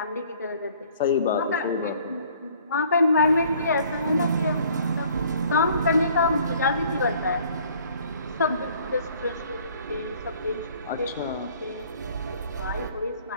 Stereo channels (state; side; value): inverted; both; correlation -0.56